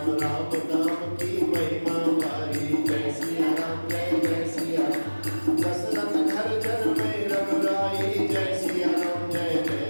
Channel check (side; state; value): both; inverted; correlation -1.00